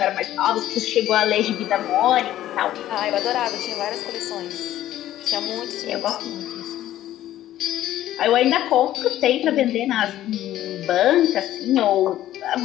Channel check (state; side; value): quieter; right; 13.3 dB